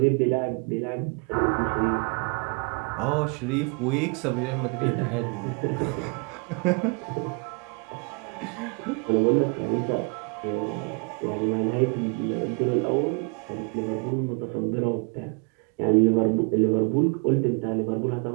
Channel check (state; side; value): quieter; left; 35.0 dB